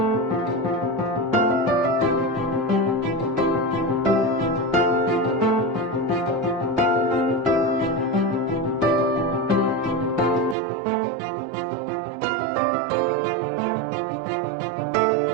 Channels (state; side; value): drops out; left; at 10.6 s